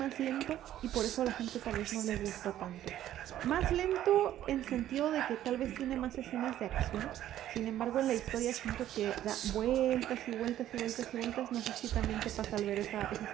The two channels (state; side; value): quieter; left; 12.4 dB